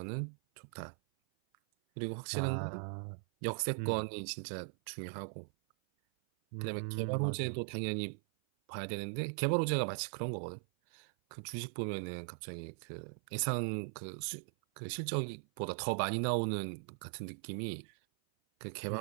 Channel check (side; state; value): left; silent; 52 dB below the other